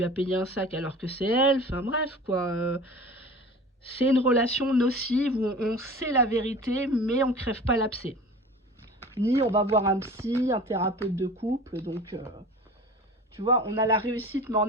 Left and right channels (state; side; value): normal; both; correlation 0.39